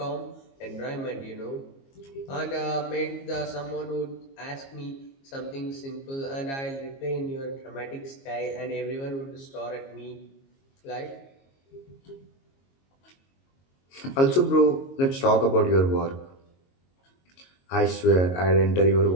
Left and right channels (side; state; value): right; late; 22 ms